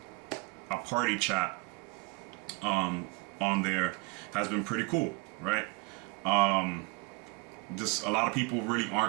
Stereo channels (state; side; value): quieter; left; 28.7 dB